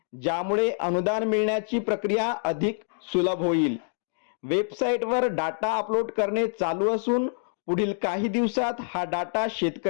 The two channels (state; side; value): silent; right; digital silence